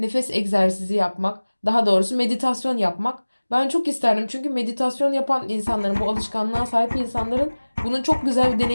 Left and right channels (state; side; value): inverted; both; correlation -1.00